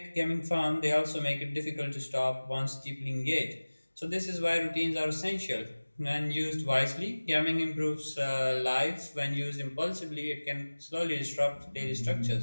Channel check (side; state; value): both; inverted; correlation -1.00